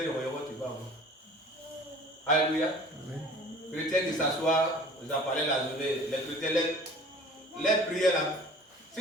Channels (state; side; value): normal; both; correlation 0.46